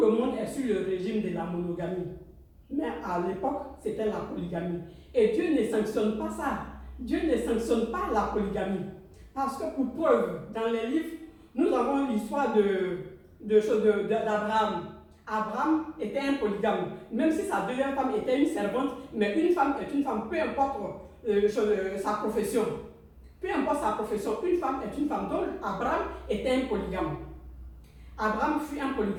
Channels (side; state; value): both; identical; correlation 1.00